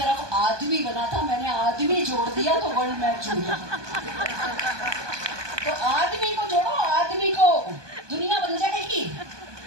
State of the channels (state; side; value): late; left; 1.2 ms